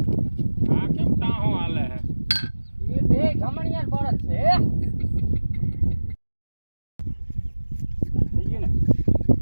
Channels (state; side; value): inverted; both; correlation -1.00